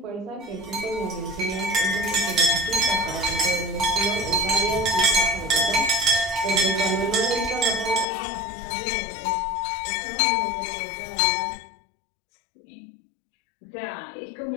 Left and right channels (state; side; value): drops out; right; at 8.1 s